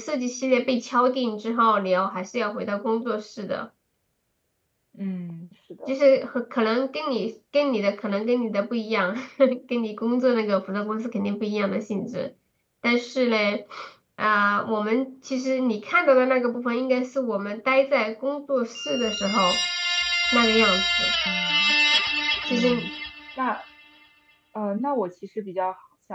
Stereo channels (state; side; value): identical; both; correlation 1.00